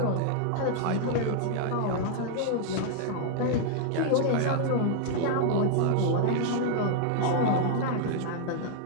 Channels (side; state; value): both; different; correlation 0.00